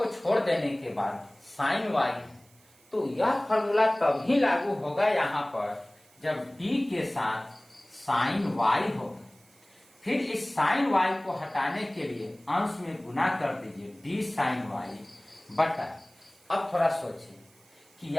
छोड़ देने के बाद साइन y है, तो यह फॉर्मूला तभी लागू होगा यहाँ पर जब d के साथ साइन y होगा। फिर इस साइन y को हटाने के लिए अंश में गुना कर दीजिए d साइन y बटा। अब थोड़ा सोचिए कि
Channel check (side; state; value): right; noise; hiss, 29 dB below the sound